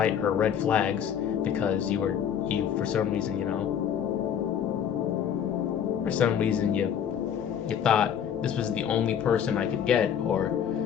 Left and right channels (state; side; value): quieter; right; 8.7 dB